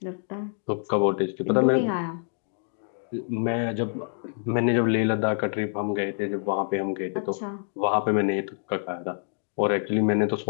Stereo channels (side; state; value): right; silent; 61 dB below the other